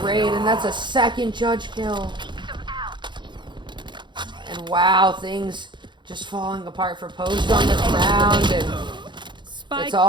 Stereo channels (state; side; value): late; left; 0.23 ms